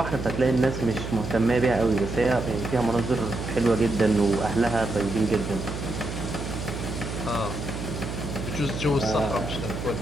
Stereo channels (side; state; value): right; noise; hum, 6 dB below the sound